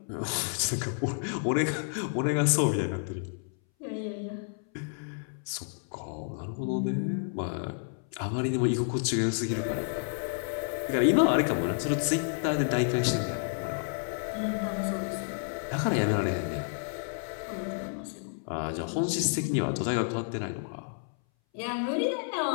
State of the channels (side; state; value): right; silent; 58 dB below the other